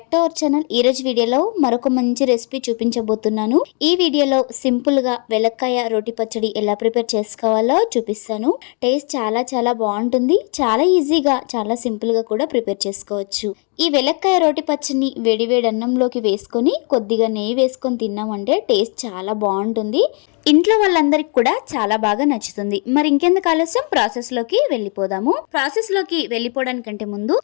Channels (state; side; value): quieter; right; 37.7 dB